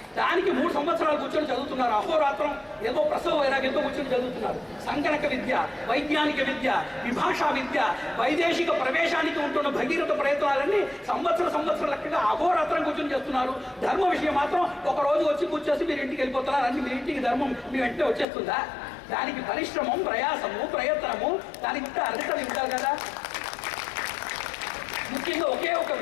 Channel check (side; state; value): right; drops out; at 18.2 s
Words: దానికి 3 సంవత్సరాలు కూర్చొని చదువుతున్నారు. అహోరాత్రం ఏదో ప్రసవ వైరాగ్యంతో కూర్చొని చదువుతున్నారు. సంగణక విద్య, వైజ్ఞానిక విద్య, విభాషా విద్య, వైదేశిక ప్రవేశానికి ఉంటున్న భగీరథ ప్రయత్నాలన్నీ సంవత్సరం లెక్కగా అహోరాత్రం కూర్చొని చేస్తున్నారు. ధర్మ విషయం మాత్రం ఒక రోజు వచ్చి కూర్చొని మీరు ఇంటికి వెళ్ళిపోతున్నారు. అన్ని మీ ఇంటికి ధర్మం మీ వెంటనే వచ్చేస్తుందా? దానికి పరిశ్రమం, ప్రయాసము, ప్రయత్నము, దానికి అర్హత ఉండాలి కదా. ముఖ్యంగా ఒకే ఒక